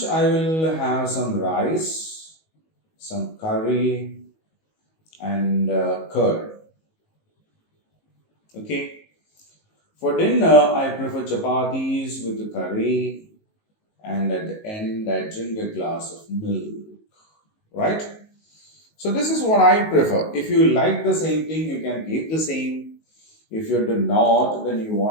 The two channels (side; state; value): right; late; 19 ms